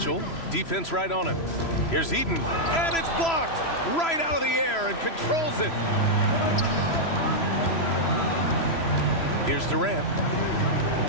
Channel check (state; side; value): late; right; 3.0 ms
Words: Defense right on him. Here's Eden. And it's blocked right out of the air and controls it. Here's Durant.